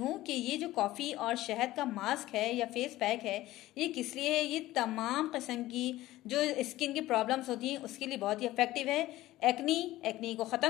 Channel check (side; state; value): right; quieter; 16.3 dB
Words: कि ये जो कॉफ़ी और शहद का मास्क है या फेस पैक है, ये किस लिए है। ये तमाम किस्म की जो स्किन की प्रॉब्लम्स होती हैं उसके लिए बहुत ही इफेक्टिव है। एक्नी को